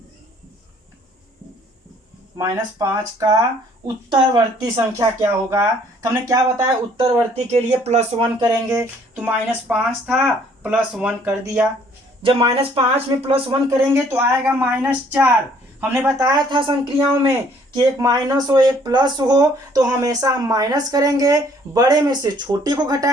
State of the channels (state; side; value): normal; both; correlation 0.61